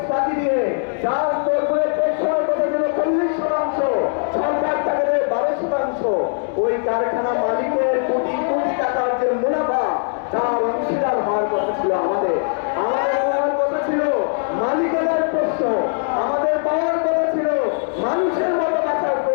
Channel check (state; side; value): silent; right; 60 dB below the other